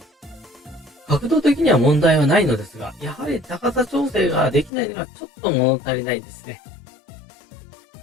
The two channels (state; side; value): drops out; right; at 4.7 s